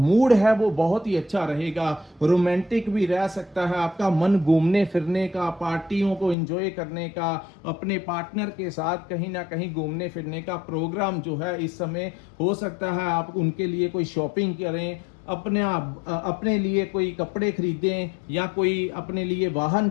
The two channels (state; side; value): drops out; right; at 6.4 s